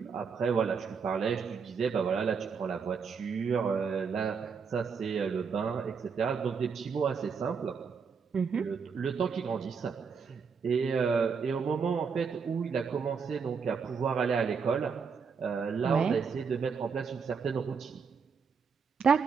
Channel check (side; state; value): left; quieter; 5.8 dB